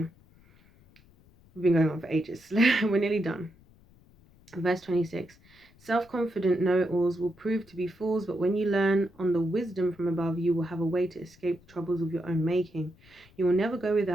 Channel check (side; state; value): left; noise; rumble, 28 dB below the sound